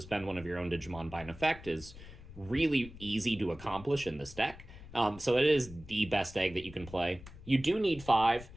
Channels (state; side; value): noise; left; rumble, 17 dB below the sound